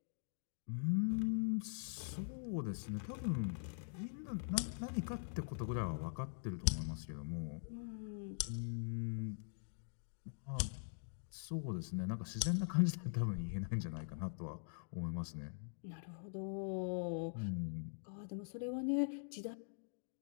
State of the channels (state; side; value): silent; right; digital silence